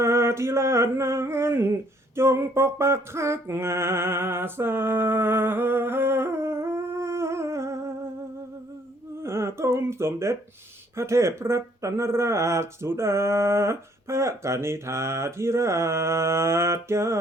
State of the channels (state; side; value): normal; both; correlation 0.64